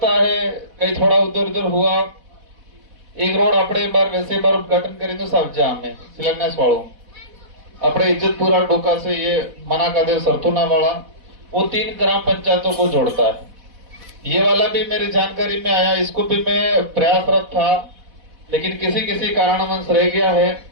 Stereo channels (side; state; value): left; late; 4.1 ms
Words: है कहीं थोड़ा उधर उधर हुआ। एक रोड अपने बार वैसे बार उद्घाटन करें तो सब जा में शिलान्यास वालों अपने इज्जतपुरा डोका से ये मना का देव सरथुना वाला वो 3 ग्राम पंचायतों को जोड़ता है। ये वाला भी मेरी जानकारी में आया, इसको भी मैं प्रयासरत था लेकिन किसी कारणवश रह गया है